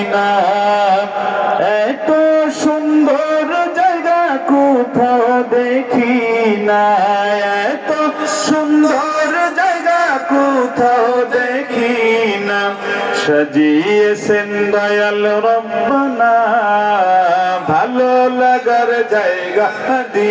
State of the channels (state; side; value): identical; both; correlation 1.00